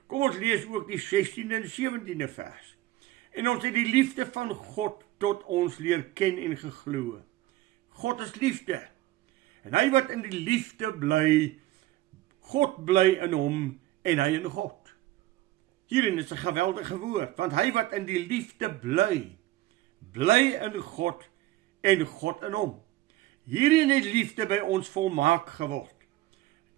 Kom ons lees ook die 16de en 17de vers. En ons het die liefde van God tot ons leer ken en geglo. God is liefde. En hy wat in die liefde bly, God bly in hom en hy in God. Hierin is 'n geweldige woord, want hy wat in die liefde bly, bly in God en God in hom. Hierin het liefde by ons volmaak geword,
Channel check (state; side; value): quieter; left; 16.4 dB